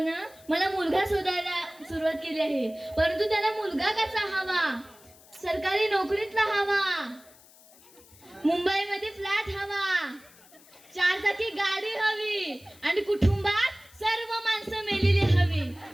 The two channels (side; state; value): left; noise; hiss, 25 dB below the sound